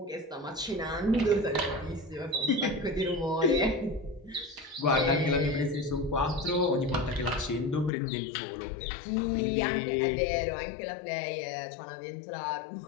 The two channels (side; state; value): right; drops out; at 7.9 s